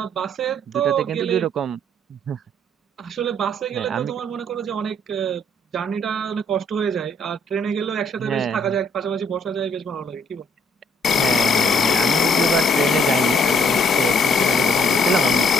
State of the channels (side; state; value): both; normal; correlation 0.66